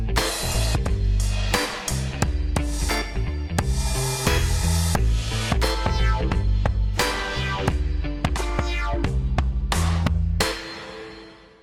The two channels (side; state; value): both; identical; correlation 1.00